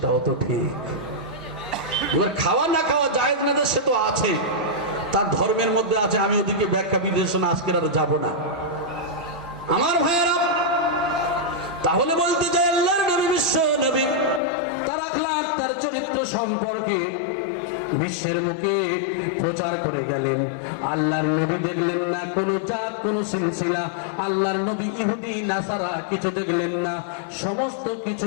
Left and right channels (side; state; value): right; drops out; at 14.4 s